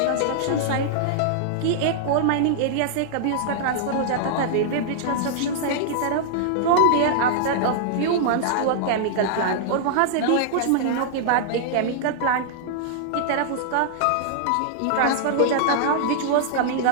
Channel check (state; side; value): different; both; correlation -0.01